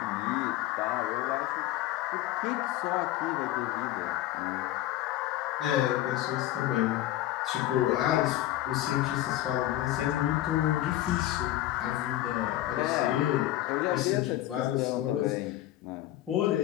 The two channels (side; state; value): right; quieter; 14.5 dB